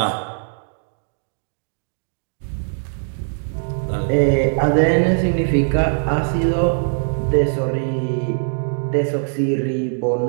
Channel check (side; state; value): left; silent; digital silence